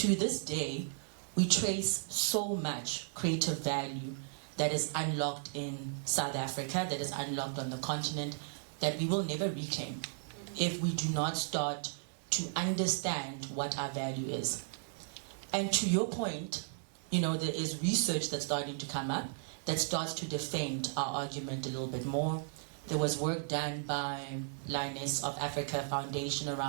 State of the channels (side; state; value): left; silent; 54 dB below the other